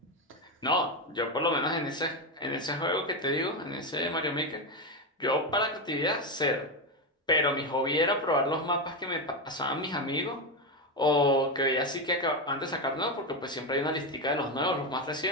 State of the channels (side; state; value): both; normal; correlation 0.11